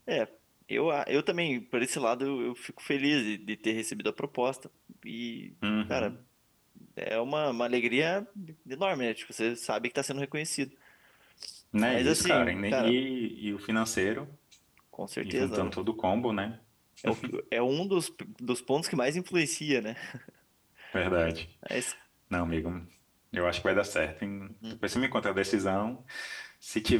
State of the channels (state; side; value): identical; both; correlation 1.00